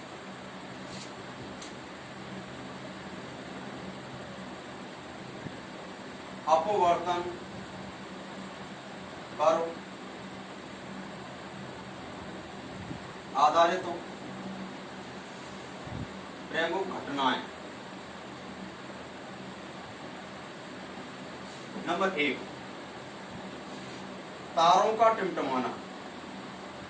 अपवर्तन पर आधारित प्रमुख घटनाएं। नंबर 1, तारों का टिमटिमाना।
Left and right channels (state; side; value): identical; both; correlation 1.00